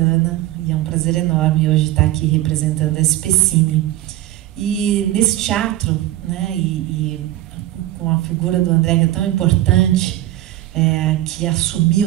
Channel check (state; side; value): quieter; left; 14.7 dB